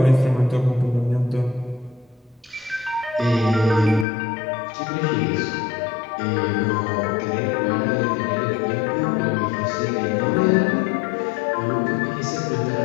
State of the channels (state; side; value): drops out; right; at 4.0 s